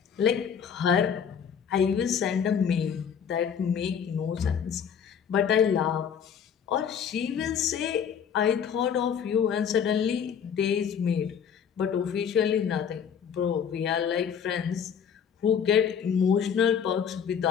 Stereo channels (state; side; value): quieter; right; 7.7 dB